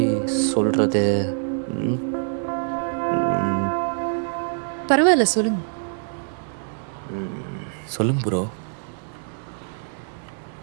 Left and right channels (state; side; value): silent; left; 62 dB below the other